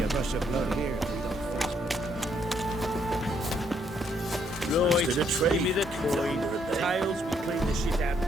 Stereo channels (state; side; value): normal; both; correlation 0.71